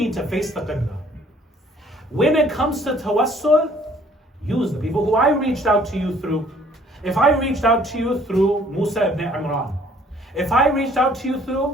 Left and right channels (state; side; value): normal; both; correlation 0.59